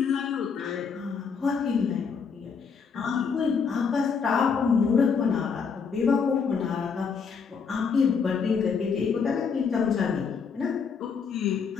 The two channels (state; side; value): quieter; right; 5.9 dB